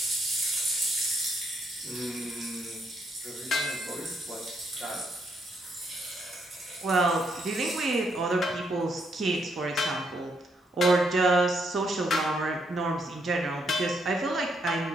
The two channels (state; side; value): normal; both; correlation 0.75